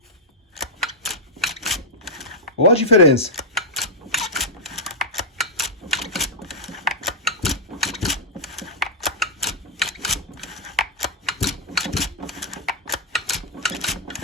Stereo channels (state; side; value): normal; both; correlation -0.08